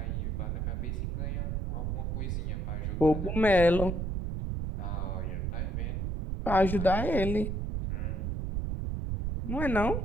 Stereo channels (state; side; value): noise; right; rumble, 1 dB below the sound